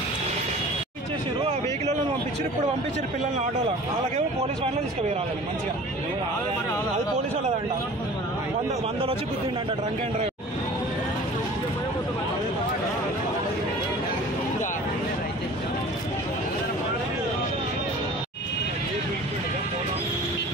వెహికల్ పంపించారు. ఇప్పుడు పంపించారు పిల్లల్ని ఆటోలో. వాళ్ళకేమో పోలీస్ వ్యాన్లో తీసుకుపోయాలి మంచిగా. అది పోలీసు వాళ్ళదంట. 100 వచ్చి గుద్దిండంట డ్రంక్ అండ్ డ్రైవ్.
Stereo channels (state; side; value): normal; both; correlation 0.43